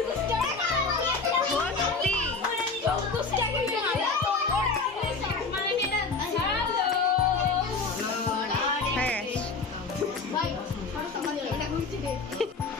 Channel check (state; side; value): quieter; right; 4.2 dB